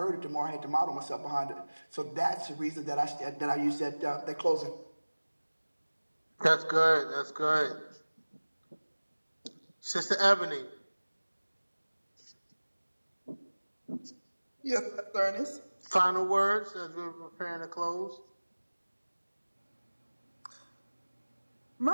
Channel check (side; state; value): both; inverted; correlation -1.00